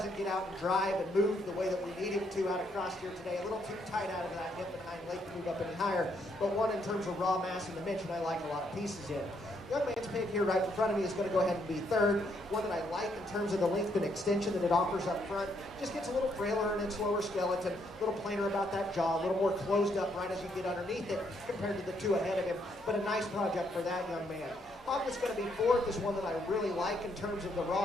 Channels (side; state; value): both; normal; correlation 0.73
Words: get out and drive and move the way that we need him to out across here today. A little too tight out of that hip and hind leg to move up any higher. But one in terms of raw mass and dimension I like a lot of pieces in. Young man's pig here right in front of me is going to go ahead and be third. One that I like in terms of the length and extension that it offers up front. Just gets a little frailer in its lower skeleton, a little plainer about that jaw, a little more closed up right as you get underneath it compared to the two ahead of him. But a nice project for that young man. Hog that's going to be fourth is one that I really like in terms of the